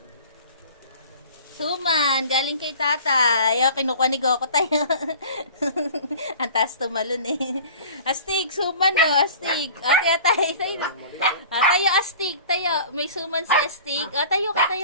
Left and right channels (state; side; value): inverted; both; correlation -0.43